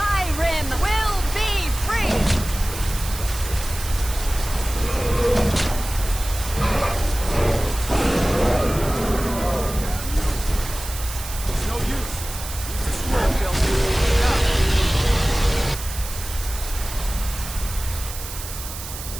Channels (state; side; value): noise; right; hiss, 10 dB below the sound